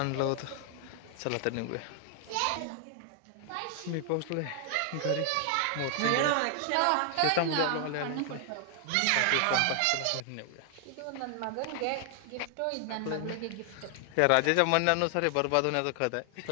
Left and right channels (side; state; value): both; different; correlation 0.00